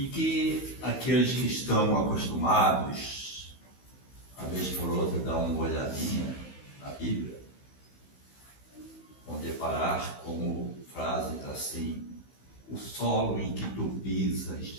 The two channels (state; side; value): late; right; 15 ms